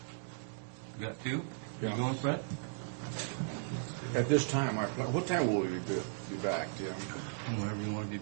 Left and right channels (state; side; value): silent; left; digital silence